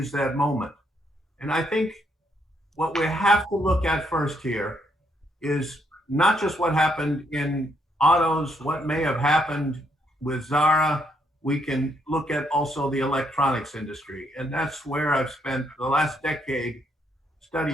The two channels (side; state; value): both; normal; correlation 0.74